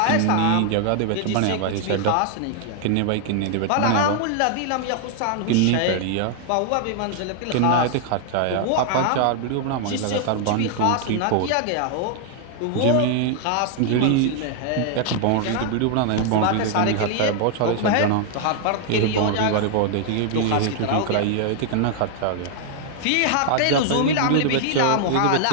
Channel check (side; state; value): both; different; correlation 0.00